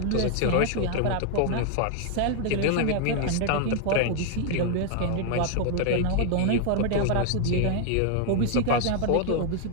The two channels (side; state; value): both; different; correlation 0.00